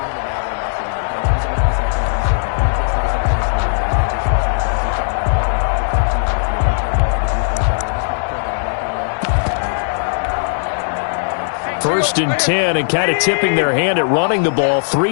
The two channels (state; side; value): silent; right; digital silence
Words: First and 10, and kind of tipping their hand at running the ball.